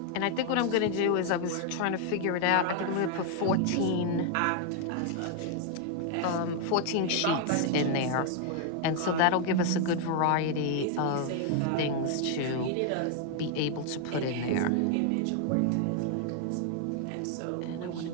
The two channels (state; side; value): different; both; correlation 0.00